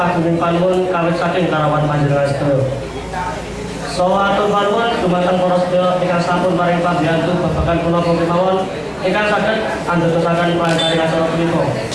panuwun kawit saking karawan panjenengan sedaya. Saha atur panuwun dumateng para sedaya ingkang sampun paring pambiyantu babagan punapa kemawon ingkang saged andadosaken paring acara punika.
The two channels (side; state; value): both; identical; correlation 1.00